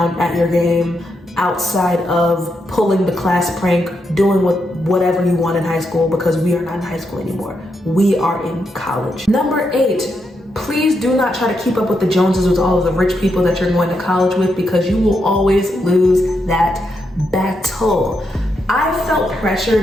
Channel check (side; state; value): both; normal; correlation 0.82